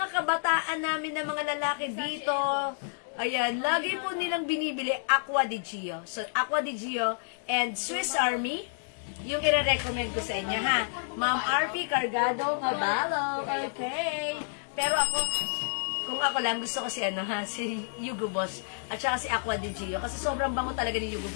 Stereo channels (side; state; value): right; silent; digital silence